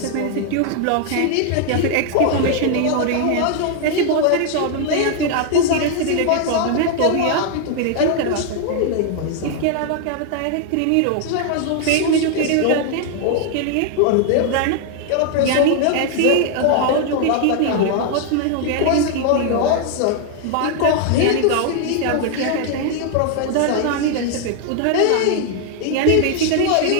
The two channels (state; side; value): different; both; correlation 0.00